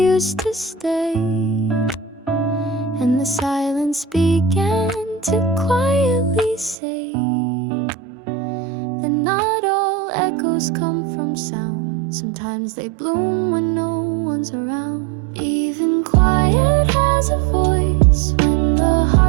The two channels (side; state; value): left; drops out; at 6.8 s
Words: to stay, and the silence began to quietly say that not all echoes come from sound. Sometimes they bloom when no one's around. Even quiet has a voice when the